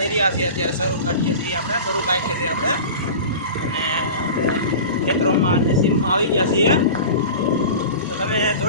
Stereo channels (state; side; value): inverted; both; correlation -0.34